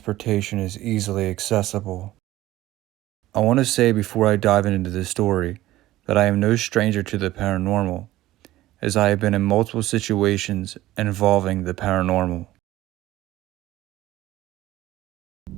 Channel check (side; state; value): left; quieter; 15.9 dB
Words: is easily accessible. I want to say before I dive into the story that I am no stranger to the paranormal, as I have been in multiple situations involving the paranormal.